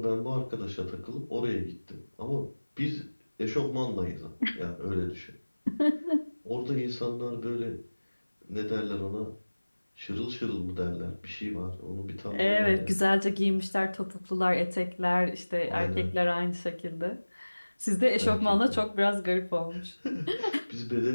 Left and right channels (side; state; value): both; inverted; correlation -1.00